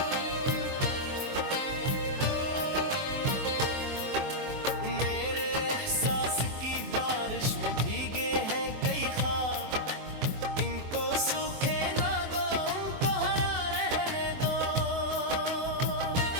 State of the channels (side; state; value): left; late; 24 ms